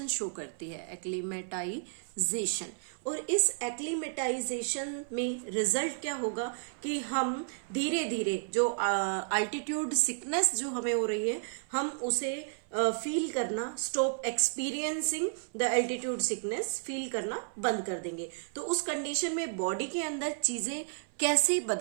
शो करती है, एक्लीमेटाइजेशन। और इस एक्लीमेटाइजेशन में रिजल्ट क्या होगा कि हम धीरे धीरे जो अल्टीट्यूड सिकनेस जो हमें हो रही है, हम उसे फील करना, stop experiencing the altitude sickness, feel करना बंद कर देंगे। तो उस कंडीशन में बॉडी के अंदर चीजें कैसे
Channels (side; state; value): left; silent; 56 dB below the other